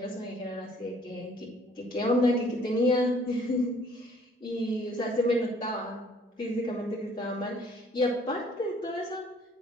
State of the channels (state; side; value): normal; both; correlation 0.59